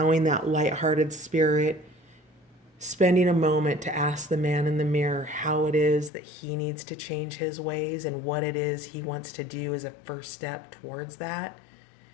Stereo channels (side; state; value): right; drops out; at 6.1 s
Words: that lighthearted spirit, spending a moment to ask the man in the mirror how it is that he needs to change his ways and what it is he wants to do as a first step towards that,